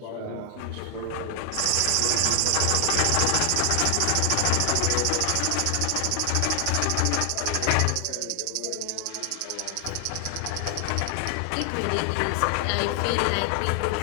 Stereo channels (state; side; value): different; both; correlation 0.00